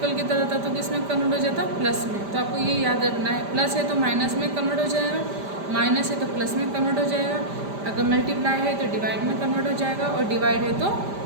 किधर होता तो किस में कन्वर्ट हो जाता, प्लस में। तो आपको ये याद रखना है, प्लस है तो माइनस में कन्वर्ट हो जाएगा, माइनस है तो प्लस में कन्वर्ट हो जाएगा। अगर मल्टीप्लाई है तो डिवाइड में कन्वर्ट हो जाएगा, और डिवाइड है तो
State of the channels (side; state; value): left; late; 5.0 ms